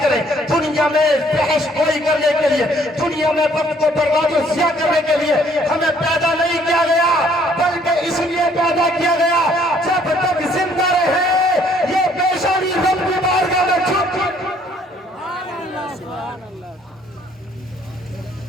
کریں۔ دنیا میں بحث گوئی کرنے کے لیے، دنیا میں وقت کو برباد و ضیاع کرنے کے لیے ہمیں پیدا نہیں کیا گیا، بلکہ اس لیے پیدا کیا گیا جب تک زندہ رہے یہ پیشانی رب کی بارگاہ میں جھک۔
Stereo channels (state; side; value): normal; both; correlation 0.62